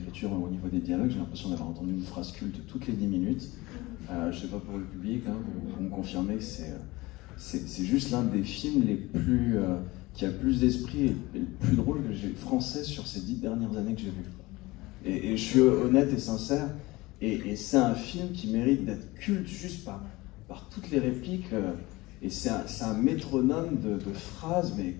au niveau des dialogues? J'ai l'impression d'avoir entendu une phrase culte toutes les 10 minutes. Je ne sais pas pour le public, hein, vous me confirmez que c'est juste l'un des films qui a le plus d'esprit et le plus drôle que j'ai français sur ces 10 dernières années que j'ai vu. Et je suis honnête et sincère, et c'est un film qui mérite d'être culte juste par toutes les répliques. Et c'est un métronome de phrases, mais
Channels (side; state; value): right; quieter; 20.9 dB